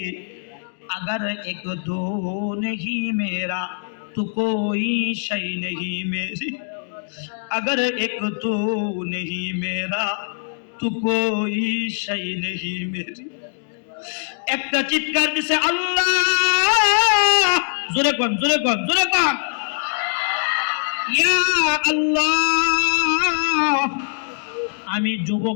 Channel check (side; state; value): right; silent; digital silence